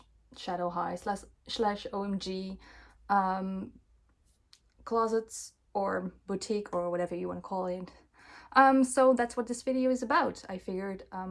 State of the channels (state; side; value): identical; both; correlation 1.00